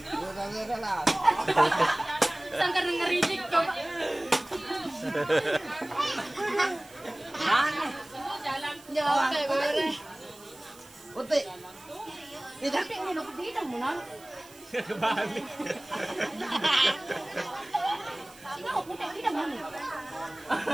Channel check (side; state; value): right; noise; hiss, 23 dB below the sound